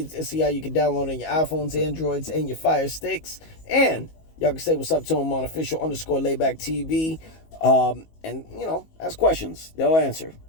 how you can download on your iPhones, Androids, and your Fire Sticks. And y'all can say what's up to them on official_Laidback TV. And, ask questions. They'll answer.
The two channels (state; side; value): late; right; 19 ms